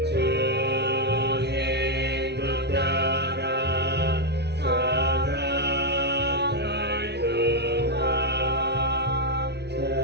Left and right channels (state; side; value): late; left; 0.49 ms